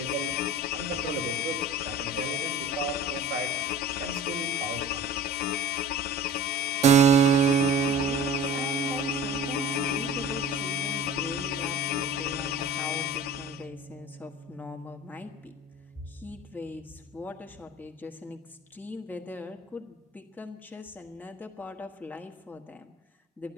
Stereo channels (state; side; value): normal; both; correlation 0.40